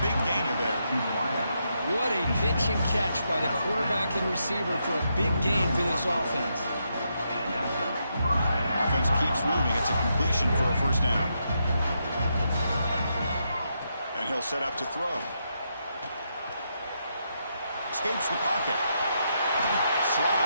big gainer there. What a pitch and catch by the quarterback and receiver for a big gain for this offense. Offense keeps moving. It's a completion for a first down. And he'll set up to throw. Escapes the pocket.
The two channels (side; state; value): both; inverted; correlation -0.81